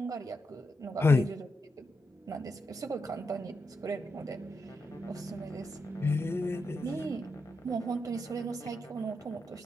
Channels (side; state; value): both; normal; correlation 0.84